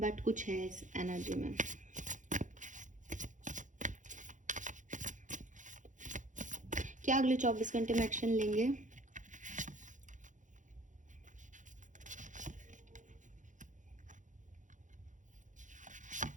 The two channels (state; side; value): late; left; 0.36 ms